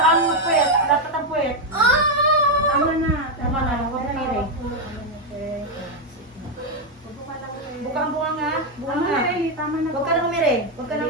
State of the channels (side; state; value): both; normal; correlation 0.03